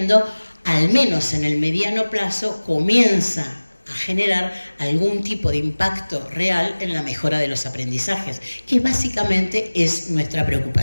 al menos en el mediano plazo, comienza a generar algún tipo de impacto real en la mejora de los aprendizajes, que básicamente es nuestra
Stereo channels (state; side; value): inverted; both; correlation -1.00